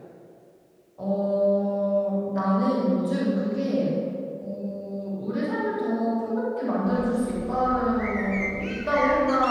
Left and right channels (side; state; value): both; identical; correlation 1.00